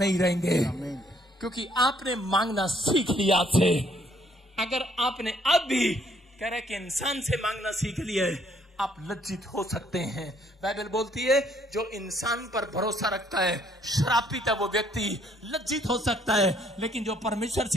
रहेंगे। आमीन। क्योंकि आपने मांगना सीख लिया आपसे। अगर आपने अब भी कह रहे कि इंसान से मांगना सीख लिया है, आप लज्जित हो सकते हैं। बाइबल बोलती है जो इंसान पर भरोसा रखता है श्रापित है वो व्यक्ति, लज्जित हो सकता है, लेकिन जो परमेश्वर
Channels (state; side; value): normal; both; correlation 0.66